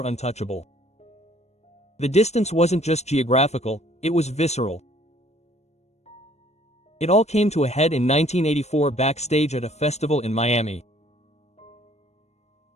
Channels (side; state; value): right; late; 0.32 ms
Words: untouchable. The distance wasn't just geographical, it was visceral. It all came to a head in 1984 backstage at a festival in Miami.